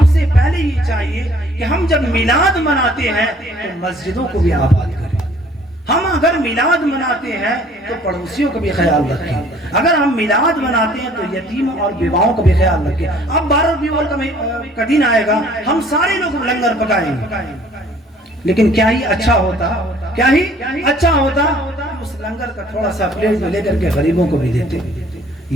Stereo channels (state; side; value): normal; both; correlation 0.56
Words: سے پہلے یہ چاہیے کہ ہم جب میلاد مناتے ہیں تو مسجدوں کو بھی آباد کریں. ہم اگر میلاد مناتے ہیں تو پڑوسیوں کا بھی خیال رکھیں. اگر ہم میلاد مناتے ہیں تو یتیموں اور بیواؤں کا بھی خیال رکھیں. اب 12 ربیع الاول کا دن آئے گا, ہم سارے لوگ لنگر پکائیں گے, لیکن کیا ہی اچھا ہوتا اس لنگر کا تھوڑا سا پلیٹ میں لے کر کے غریبوں کو بھی دیتے,